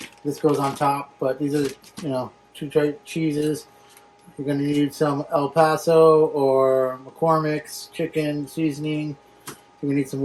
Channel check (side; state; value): both; identical; correlation 1.00